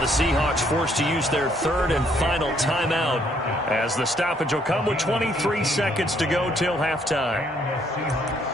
Seahawks forced to use their third and final timeout as the stoppage will come with 23 seconds to go till halftime.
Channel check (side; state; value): both; normal; correlation 0.68